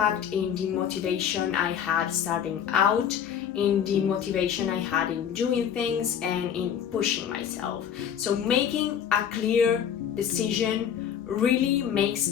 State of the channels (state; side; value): quieter; right; 8.6 dB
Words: in the motivation I had starting out, in the motivation I had in doing things and in pushing myself. So making a clear decision really makes